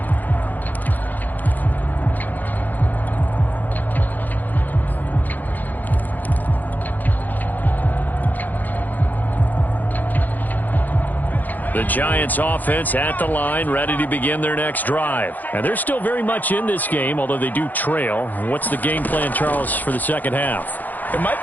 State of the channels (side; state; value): right; late; 0.083 ms